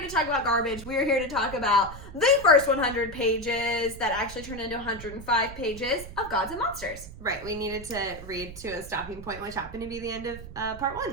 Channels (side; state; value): right; noise; rumble, 14 dB below the sound